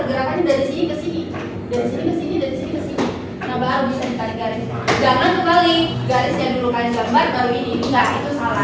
dari sini ke sini. Dari sini ke sini, dari sini ke sini. Nah, baru bisa ditarik garis. Jangan kebalik. Garisnya dulu kalian gambar, baru ini. Enggak, itu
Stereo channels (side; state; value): both; identical; correlation 1.00